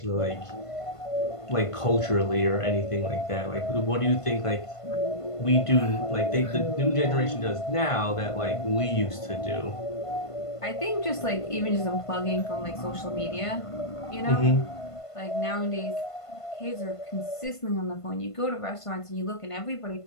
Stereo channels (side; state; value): right; late; 1.5 ms